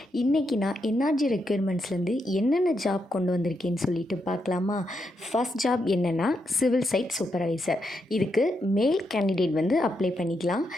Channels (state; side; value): normal; both; correlation 0.82